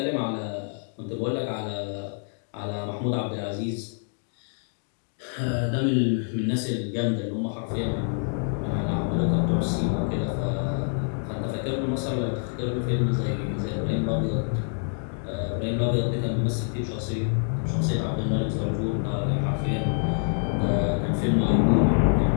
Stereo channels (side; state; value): right; silent; 56 dB below the other